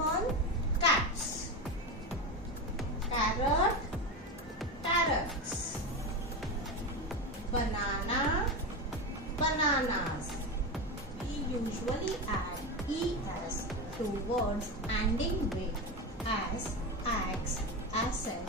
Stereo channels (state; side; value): normal; both; correlation 0.18